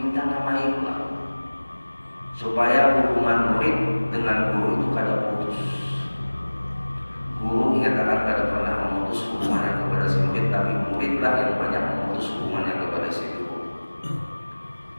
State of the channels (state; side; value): inverted; both; correlation -1.00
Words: nama imam, supaya hubungan murid dengan guru itu kada putus. Guru ingatkan kada pernah memutus hubungannya kepada si murid, tapi muridlah yang banyak memutus hubungannya kepada si guru.